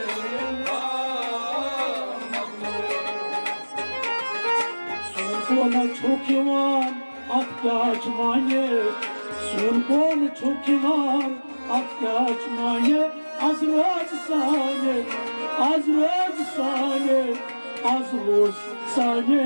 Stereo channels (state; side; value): inverted; both; correlation -1.00